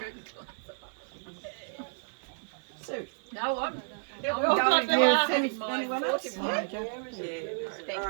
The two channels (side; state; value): left; silent; digital silence